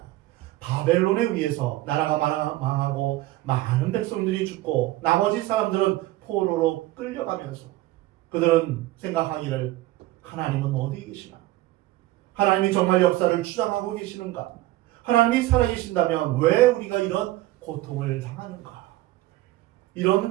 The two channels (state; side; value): quieter; left; 17.1 dB